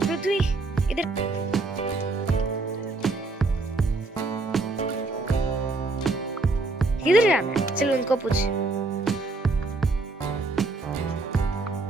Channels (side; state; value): left; quieter; 3.3 dB